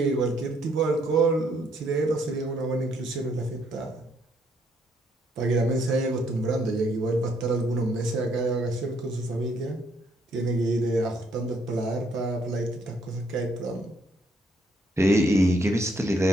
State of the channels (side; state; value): both; normal; correlation 0.70